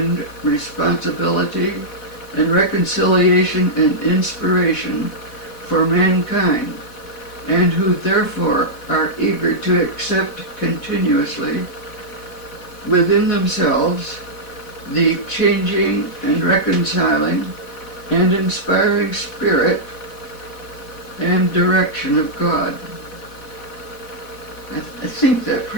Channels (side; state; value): right; late; 4.1 ms